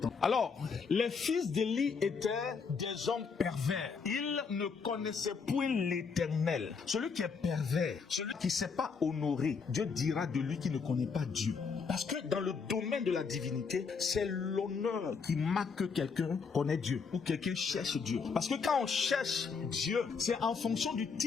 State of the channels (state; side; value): quieter; right; 5.5 dB